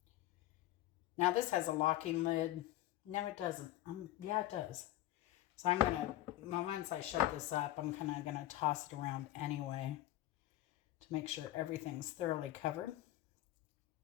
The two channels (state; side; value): quieter; right; 14.9 dB